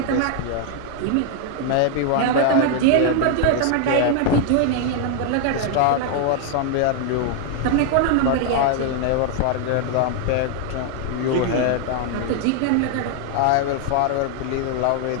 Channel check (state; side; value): different; both; correlation 0.00